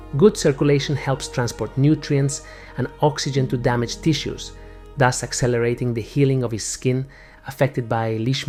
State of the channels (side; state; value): both; identical; correlation 1.00